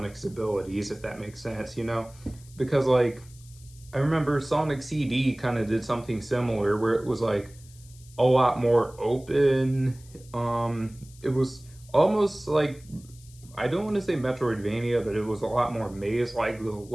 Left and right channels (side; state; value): left; noise; hiss, 24 dB below the sound